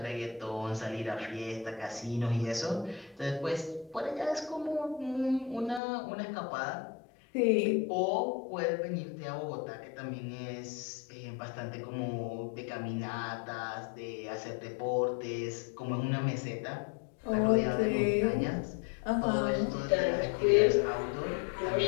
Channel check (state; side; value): drops out; right; at 5.8 s